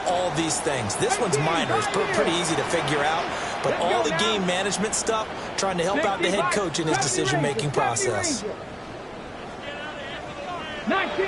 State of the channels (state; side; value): identical; both; correlation 1.00